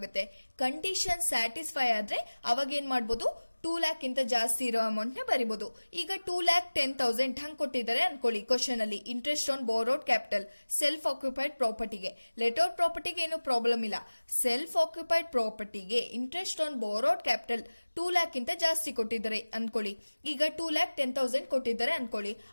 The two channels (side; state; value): both; inverted; correlation -1.00